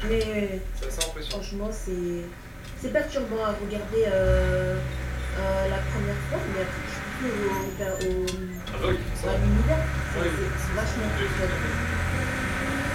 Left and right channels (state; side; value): identical; both; correlation 1.00